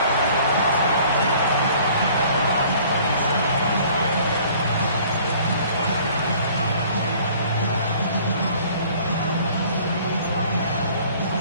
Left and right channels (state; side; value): inverted; both; correlation -0.53